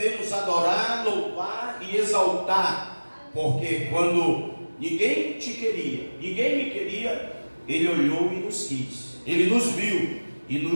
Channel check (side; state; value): both; inverted; correlation -1.00